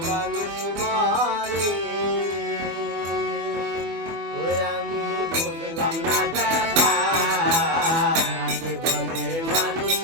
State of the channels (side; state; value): left; late; 24 ms